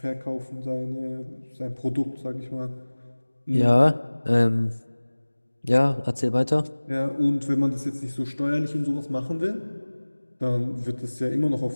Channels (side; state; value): both; inverted; correlation -1.00